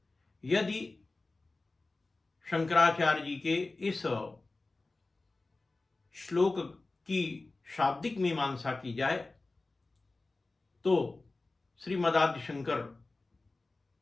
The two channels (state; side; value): quieter; right; 3.3 dB